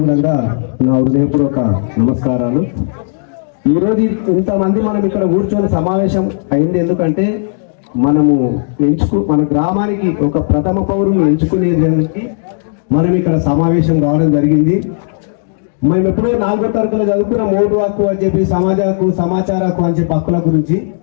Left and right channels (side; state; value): right; silent; digital silence